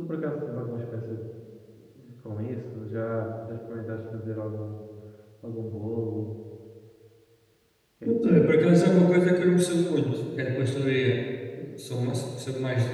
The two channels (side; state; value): both; identical; correlation 1.00